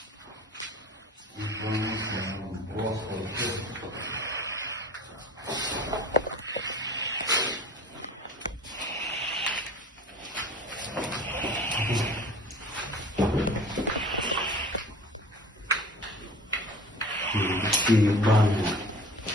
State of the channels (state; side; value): normal; both; correlation 0.43